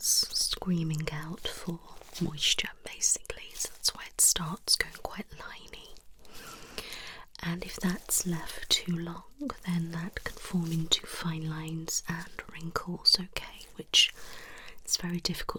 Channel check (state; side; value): identical; both; correlation 1.00